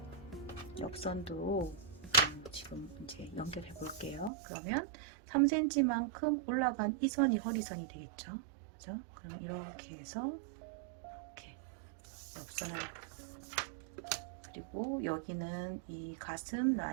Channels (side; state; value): left; drops out; at 4.3 s